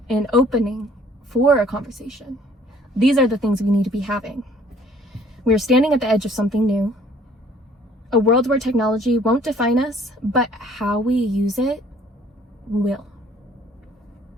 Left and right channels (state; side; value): normal; both; correlation 0.57